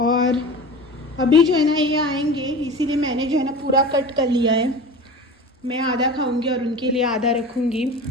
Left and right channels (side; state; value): both; normal; correlation 0.33